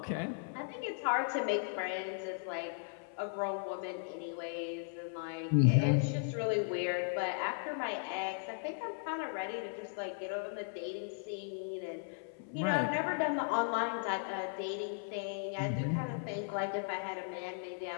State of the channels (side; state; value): right; silent; 53 dB below the other